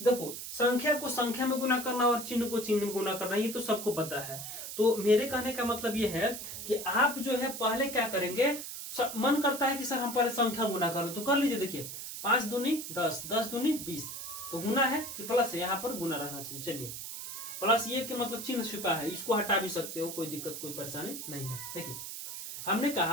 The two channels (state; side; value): noise; right; hiss, 8 dB below the sound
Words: देखो संख्या को संख्या में गुना करना और चिन्ह को चिन्ह में गुना करना ये तो सबको पता है। तो मेरे कहने का मतलब ये है कि आप जो है पहले क्या करेंगे, मन करता है कि सर हम पहले संख्या गुना कर लो तो कर लीजिए। देखिए 5 दूनी 10, 10 दूनी 20, तो गुना है कि प्लस है? यहाँ पर गुना रहना चाहिए। चलिए प्लस ये कि मतलब चिन्ह छिपा है, इसको हटा भी सकते हो, कोई दिक्कत कोई परेशानी नहीं है। देखिए हमने